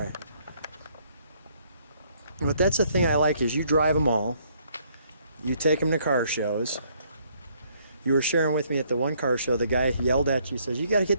But that's the thing I like is you drive them all. You take them to car shows. You were sharing with me at the one car show, the guy yelled at you, says, you got to get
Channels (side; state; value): both; inverted; correlation -0.66